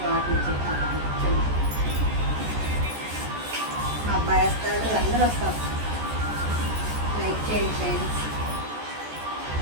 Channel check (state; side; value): late; left; 14 ms